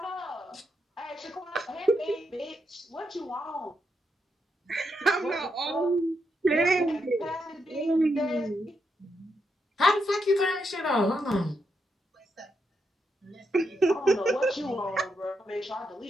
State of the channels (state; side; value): normal; both; correlation 0.82